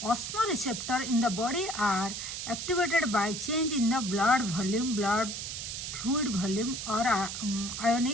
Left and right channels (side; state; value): right; noise; hiss, 6 dB below the sound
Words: Osmoreceptor in the body are activated by change in the blood volume, blood fluid volume और